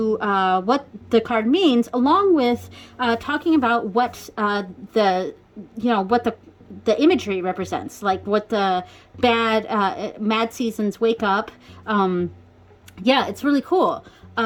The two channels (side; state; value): both; identical; correlation 1.00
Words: what the card means, along with talking about what the imagery represents, like what the mad seasons wake up. Yeah, it's really cool.